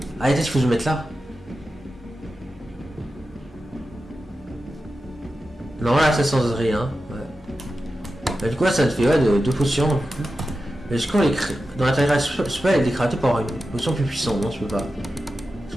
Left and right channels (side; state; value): both; normal; correlation 0.92